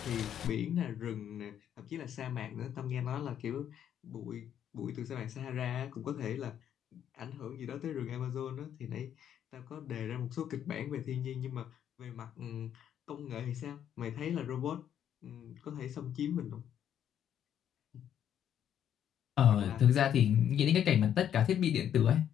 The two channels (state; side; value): quieter; right; 9.7 dB